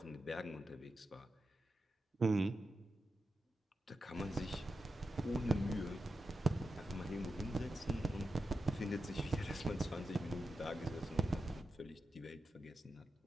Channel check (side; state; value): both; normal; correlation 0.90